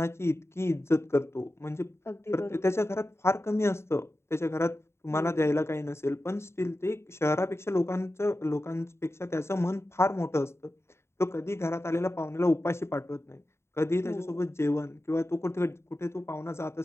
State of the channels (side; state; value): right; late; 0.13 ms